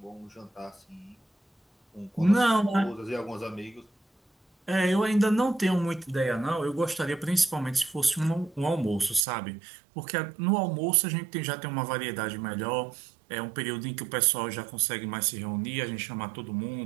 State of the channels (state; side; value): drops out; left; at 9.2 s